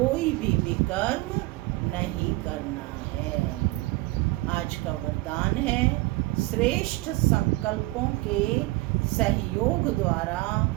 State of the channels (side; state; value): left; quieter; 21.0 dB